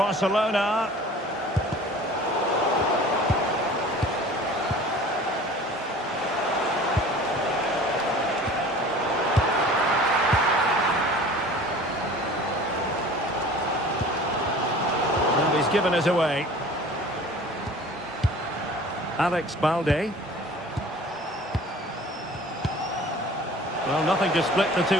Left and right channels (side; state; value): both; normal; correlation 0.44